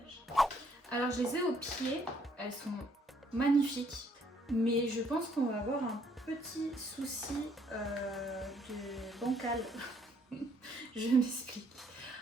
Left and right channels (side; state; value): both; normal; correlation 0.67